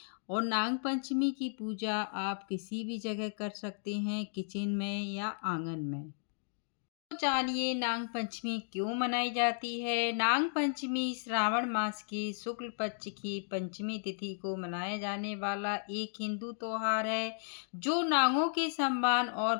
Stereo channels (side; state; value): right; silent; digital silence